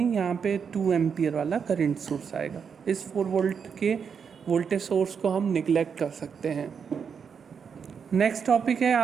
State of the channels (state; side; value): quieter; left; 6.6 dB